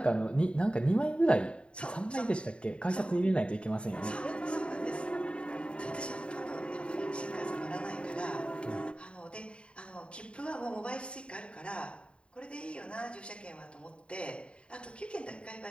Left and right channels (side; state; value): right; late; 0.056 ms